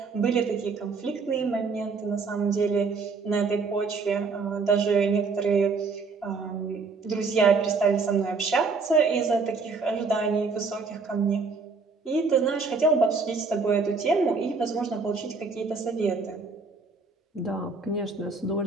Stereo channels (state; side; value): quieter; left; 4.4 dB